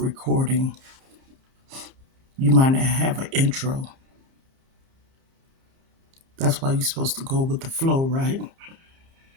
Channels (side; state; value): left; late; 30 ms